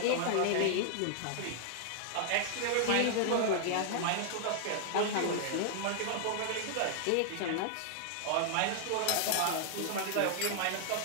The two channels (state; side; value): different; both; correlation 0.00